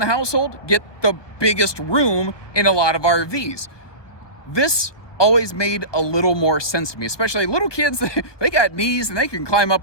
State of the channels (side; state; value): right; late; 1.2 ms